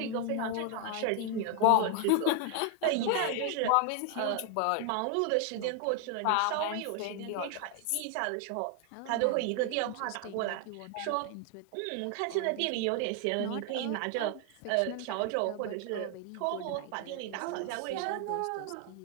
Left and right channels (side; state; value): both; different; correlation 0.00